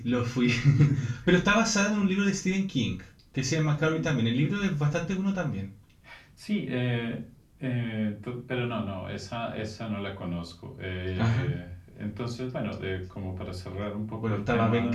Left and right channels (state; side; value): identical; both; correlation 1.00